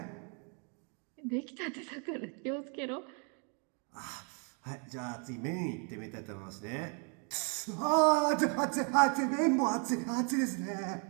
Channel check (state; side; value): quieter; left; 38.1 dB